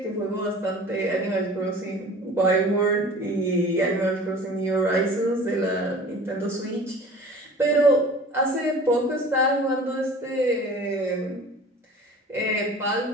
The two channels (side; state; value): both; normal; correlation 0.43